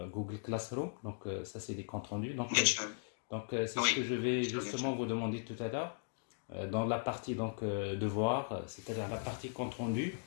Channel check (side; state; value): right; silent; digital silence